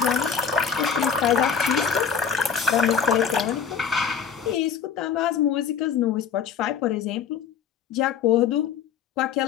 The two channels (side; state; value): right; quieter; 7.1 dB